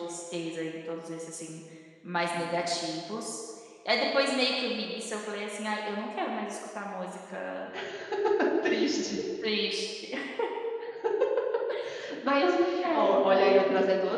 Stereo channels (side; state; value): both; identical; correlation 1.00